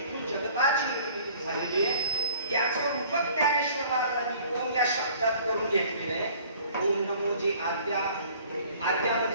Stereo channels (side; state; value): both; inverted; correlation -0.52